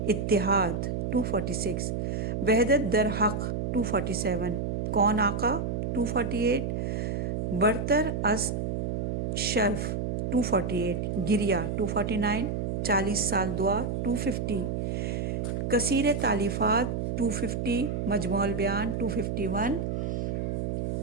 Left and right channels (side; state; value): right; noise; hum, 1 dB below the sound